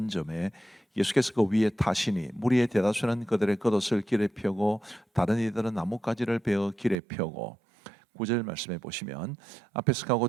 예수께서 그 위에 타시니 무리의 대다수는 그들의 겉옷을 길에 펴고 다른 이들은 나뭇가지를 베어 길에 펴고 9절 말씀해 보시면 앞에서 가고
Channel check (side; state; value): left; drops out; at 7.0 s